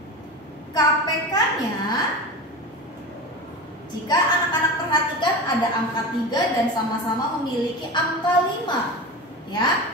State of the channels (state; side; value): normal; both; correlation 0.28